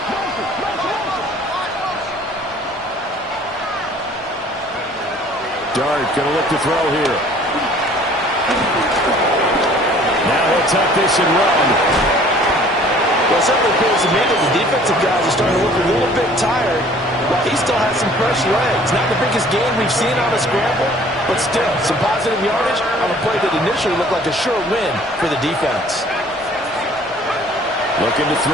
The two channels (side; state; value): both; normal; correlation 0.53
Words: Dart going to look to throw here. Now he'll tuck this and run. Well, it certainly appears to me that the defensive guys are starting to look a little bit tired. Well, he still has some fresh legs. Not the biggest gain we've seen on a scramble, but still some positive yardage on a play that initially looked like a sure win for the defense. Looking to